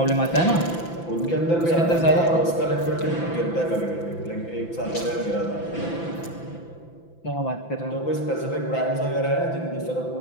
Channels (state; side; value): late; right; 5.9 ms